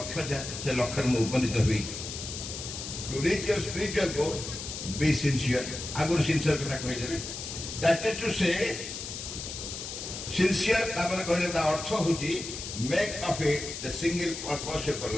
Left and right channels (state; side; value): noise; left; hiss, 7 dB below the sound